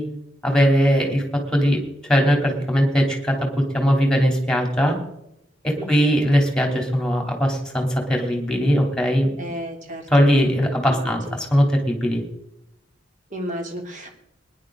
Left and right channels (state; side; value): normal; both; correlation 0.86